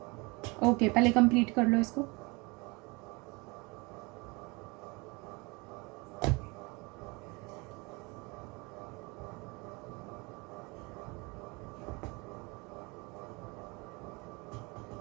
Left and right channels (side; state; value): left; quieter; 27.1 dB